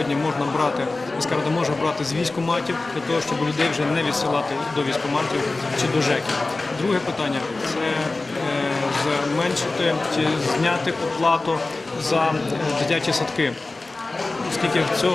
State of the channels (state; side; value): quieter; right; 3.3 dB